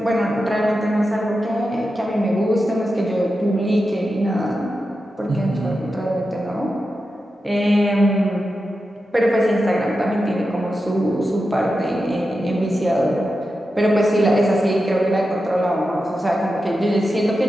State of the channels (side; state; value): both; normal; correlation 0.90